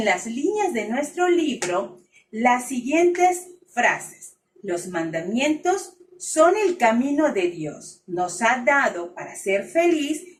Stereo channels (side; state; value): both; identical; correlation 1.00